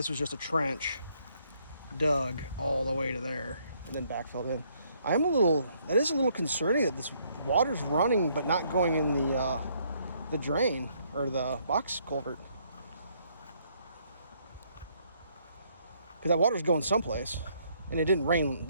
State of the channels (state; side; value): inverted; both; correlation -0.69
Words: was just a trench dug all the way to there and then backfilled in. That is a little concerning that this water's running but not going in the drain or the box culvert. Because that water's going someplace and it didn't rain.